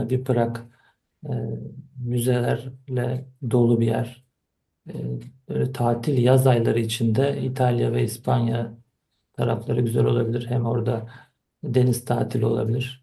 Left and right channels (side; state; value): both; identical; correlation 1.00